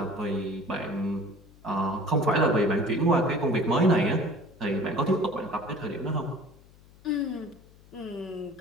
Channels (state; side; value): noise; left; hum, 25 dB below the sound